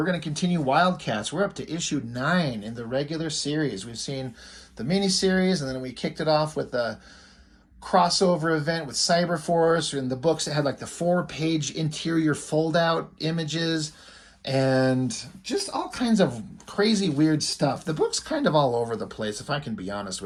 going to continue Wildcats. We're up to issue 9 in the regular series. We've seen the mini-series, and then we kicked it off with a crossover event with Cyberforce, and the books that had like the 4-page interior fold-out images and just all kinds of crazy weird stuff. The book's kind of all over the place, if I can be honest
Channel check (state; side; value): identical; both; correlation 1.00